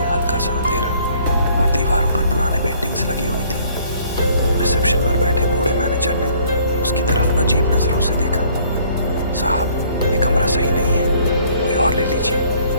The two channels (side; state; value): both; inverted; correlation -0.59